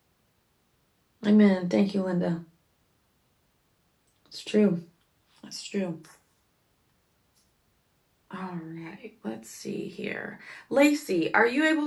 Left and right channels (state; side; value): identical; both; correlation 1.00